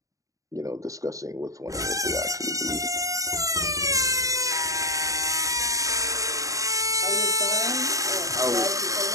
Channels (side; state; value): left; late; 0.16 ms